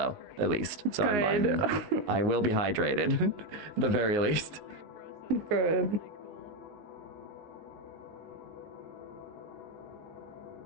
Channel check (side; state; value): left; late; 19 ms